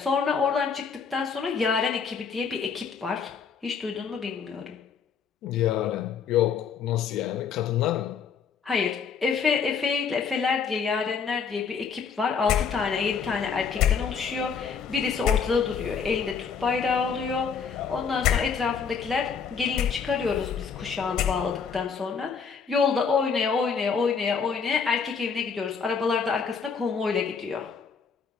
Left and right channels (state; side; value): quieter; right; 6.2 dB